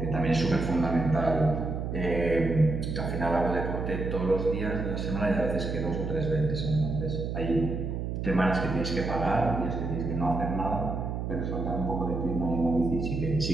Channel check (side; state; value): right; noise; hum, 3 dB below the sound